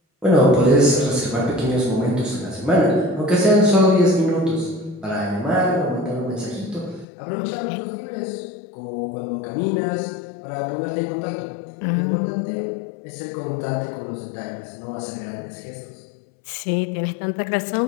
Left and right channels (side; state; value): right; drops out; at 7.1 s